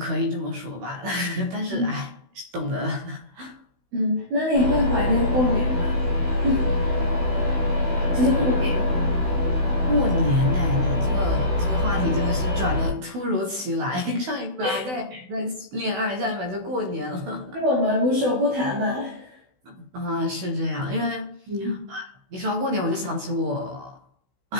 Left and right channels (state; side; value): late; left; 16 ms